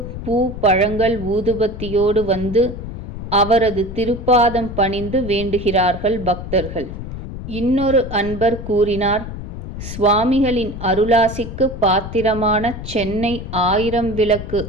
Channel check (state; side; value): noise; left; rumble, 9 dB below the sound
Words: பூ, பழங்கள், ஊதுபத்தியோடு வந்து அவரது திருப்பாதம் பணிந்து வேண்டுகிறார்கள் பக்தர்கள். இன்னொரு அன்பர் கூறினார், சுவாமிகளின் அருளாசிக்கு பாத்திரமான சென்னை 1000 விளக்கு